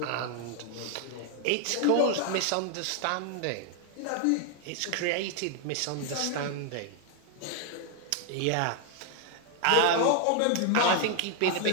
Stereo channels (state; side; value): different; both; correlation 0.00